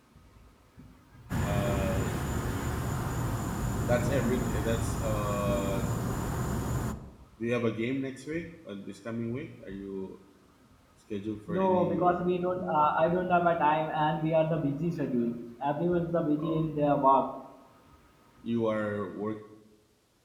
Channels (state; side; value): identical; both; correlation 1.00